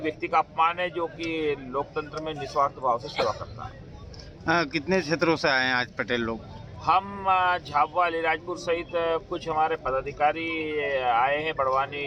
का अपमान है जो कि लोकतंत्र में निस्वार्थ भाव से सेवा करता है। कितने क्षेत्रों से आए हैं आज पटेल लोग? हम झाबुआ अलीराजपुर सहित कुछ हमारे पदाधिकारी आए हैं,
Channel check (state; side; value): identical; both; correlation 1.00